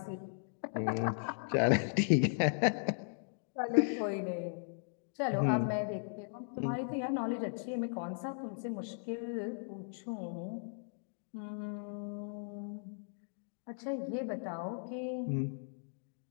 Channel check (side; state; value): right; silent; digital silence